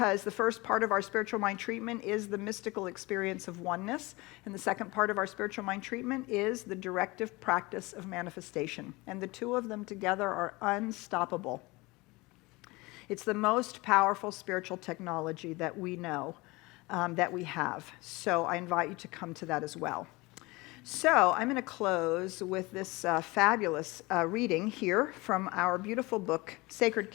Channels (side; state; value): right; quieter; 23.1 dB